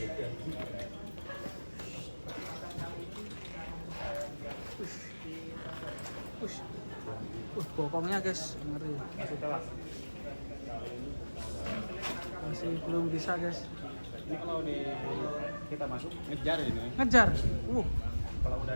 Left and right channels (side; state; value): both; inverted; correlation -1.00